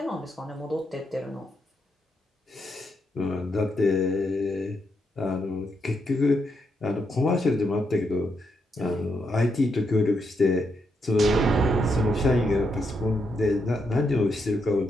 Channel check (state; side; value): normal; both; correlation 0.80